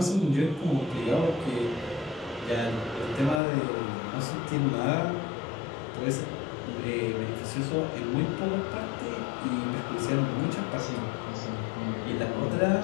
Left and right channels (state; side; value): drops out; right; at 3.4 s